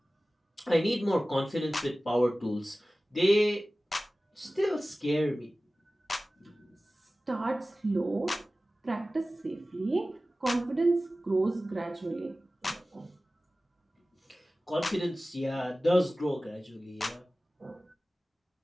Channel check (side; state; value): both; normal; correlation 0.97